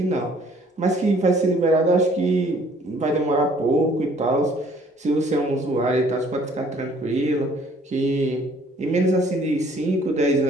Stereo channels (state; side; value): normal; both; correlation 0.59